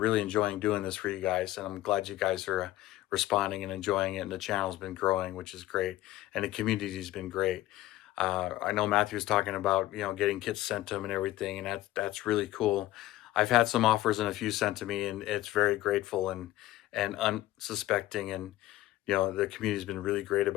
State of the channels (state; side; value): quieter; right; 15.8 dB